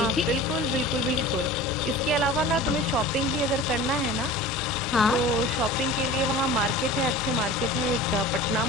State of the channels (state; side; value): normal; both; correlation 0.38